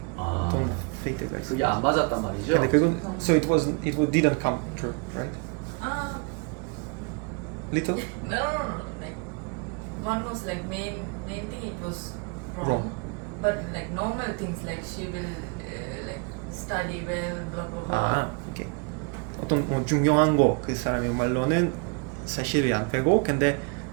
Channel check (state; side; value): quieter; left; 33.6 dB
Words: 아 어떤 페이트가 있어. 그게 안 맞았단 말이죠? 근데 그건 so it didn't come true, right? Little? No. Like one was like main thing it was wrong. Wrong. But like normal things like she will like study well, blah blah blah. 오케이. 어떤 중요한 거 그 사람의 말로는 사실이 안 되고 근데